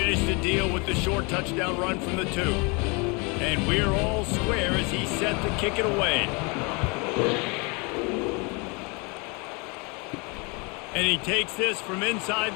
the deal with the short touchdown run from the 2. And we're all square as he's set to kick it away. And he takes this from inside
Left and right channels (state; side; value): quieter; right; 30.2 dB